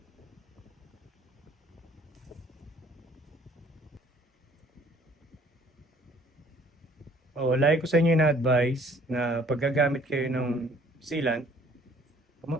Oh, lagi ko sa inyo na-advise na paggagamit kayo ng sealant,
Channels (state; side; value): normal; both; correlation 0.58